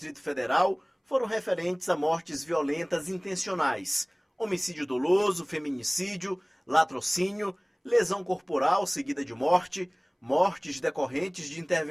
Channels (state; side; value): identical; both; correlation 1.00